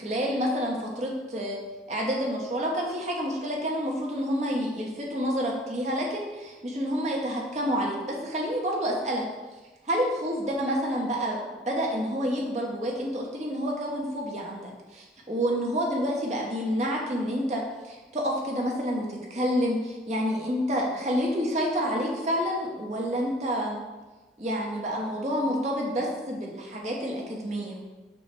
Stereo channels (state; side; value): normal; both; correlation 0.48